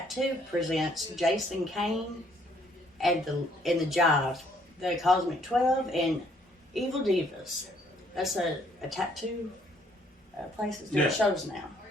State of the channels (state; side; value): normal; both; correlation 0.65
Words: presents Jason Kane and the Jive, the Cosmic 12, and Evil Divas. That's a tattoo place that's doing Yeah. shows now.